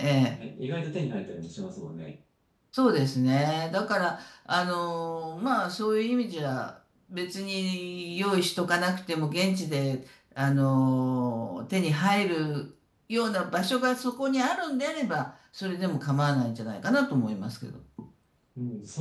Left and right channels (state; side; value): identical; both; correlation 1.00